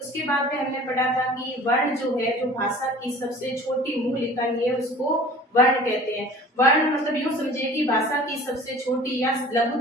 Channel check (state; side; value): normal; both; correlation 0.45